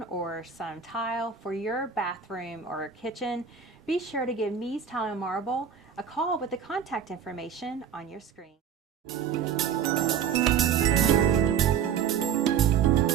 or some tile for your bathroom or kitchen, be sure to give Mies Tile and Marble a call with the contact information on your screen.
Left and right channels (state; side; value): quieter; left; 7.7 dB